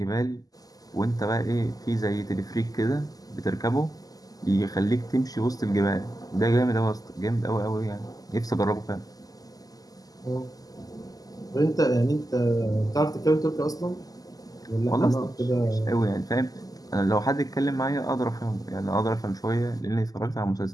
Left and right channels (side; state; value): right; late; 0.17 ms